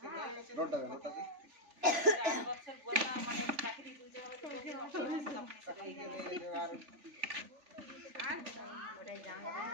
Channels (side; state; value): left; late; 3.4 ms